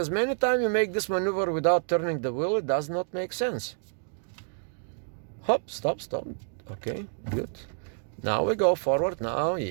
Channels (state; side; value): silent; left; digital silence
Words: many times you make this maneuver without turning the wheel, it does not make sense. Hop, stop. Okay, good. Now we go forward. Now,